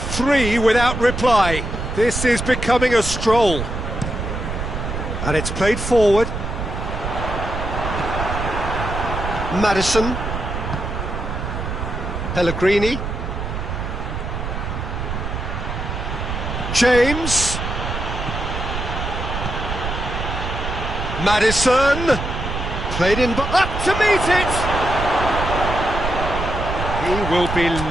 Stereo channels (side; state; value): right; noise; rumble, 4 dB below the sound